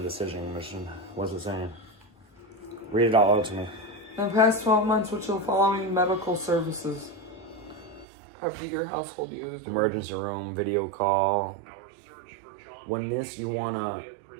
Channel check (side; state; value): left; drops out; at 8.1 s